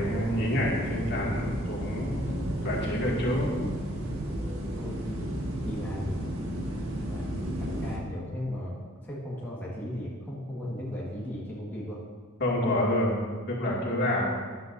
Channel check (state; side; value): normal; both; correlation 0.53